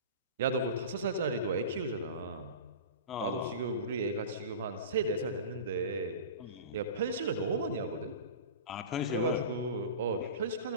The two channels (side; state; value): both; inverted; correlation -0.31